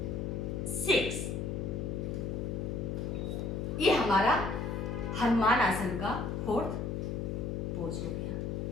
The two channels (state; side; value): noise; left; hum, 2 dB below the sound